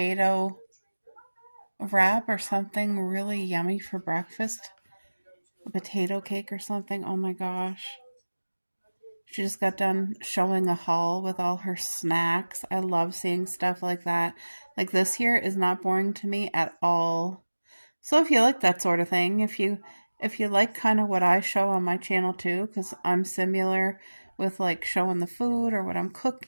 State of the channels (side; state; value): both; inverted; correlation -1.00